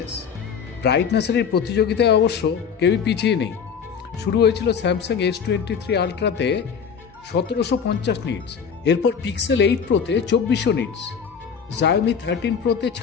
ব্রাইটনেসের এই প্রতিযোগিতায় অবশ্য কেউই পিছিয়ে নেই। শুরু হয়েছিল স্যামসাং S23 আলট্রাতে 1750 নিটস, এরপর পিক্সেল 8 প্রোতে 2400 নিটস, Xiaomi 13 প্রোতে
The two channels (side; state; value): right; quieter; 6.7 dB